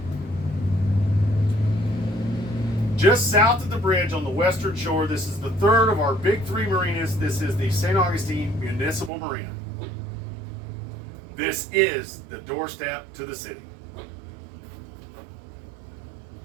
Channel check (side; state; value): left; drops out; at 9.1 s